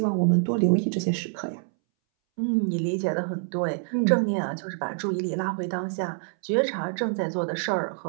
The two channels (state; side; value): silent; left; 61 dB below the other